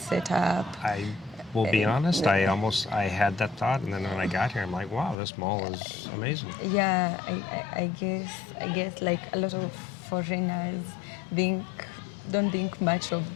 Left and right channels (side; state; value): right; drops out; at 5.2 s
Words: setup. I will be honest, I had that thought, and then when I got here, I'm like, wow, this mall is amazing. Yeah, I guess like a lot of foreigners don't think much of